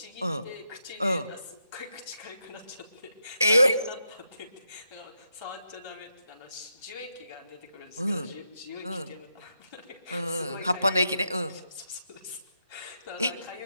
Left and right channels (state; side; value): inverted; both; correlation -0.84